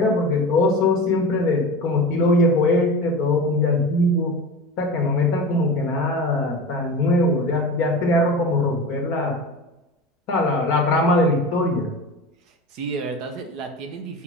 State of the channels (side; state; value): both; normal; correlation 0.30